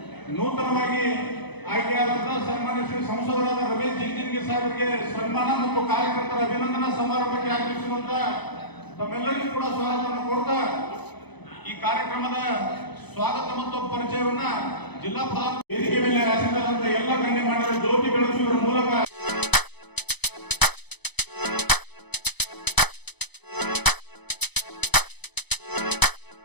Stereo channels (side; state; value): right; late; 0.99 ms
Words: ನೂತನವಾಗಿ ಆಯ್ಕೆಯಾದಂತಹ ಸನ್ಮಾನ್ಯ ಶ್ರೀ ಸಂಸದರಾದ ರಮೇಶ್ ಜಿಗಜಿಣಗಿ ಸಾಹೇಬರಿಗೆ ಸನ್ಮಾನ ಮತ್ತು ಕಾರ್ಯಕರ್ತರ ಅಭಿನಂದನಾ ಸಮಾರಂಭಕ್ಕೆ ಆಗಮಿಸಿರುವಂತ ತಮ್ಮೆಲ್ಲರಿಗೂ ಕೂಡ ಸ್ವಾಗತವನ್ನು ಕೊಡ್ತಾ ಈ ಕಾರ್ಯಕ್ರಮದ ಸ್ವಾಗತ ಮತ್ತು ಪರಿಚಯವನ್ನ ಜಿಲ್ಲಾ ಪ್ರಧಾನ ವೇದಿಕೆ ಮೇಲೆ ಆಸೀನರಾದಂತಹ ಎಲ್ಲ ಗಣ್ಯಮಾನ್ಯರು ಜ್ಯೋತಿ ಬೆಳಗಿಸುವುದರ ಮೂಲಕ